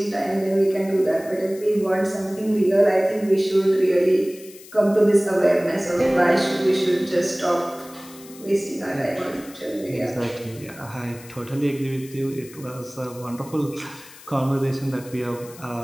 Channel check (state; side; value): noise; left; hiss, 20 dB below the sound